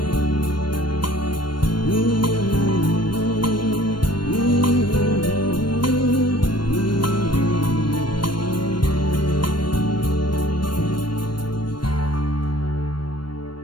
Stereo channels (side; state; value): right; late; 0.72 ms